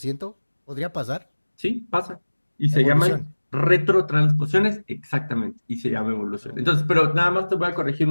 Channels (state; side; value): inverted; both; correlation -1.00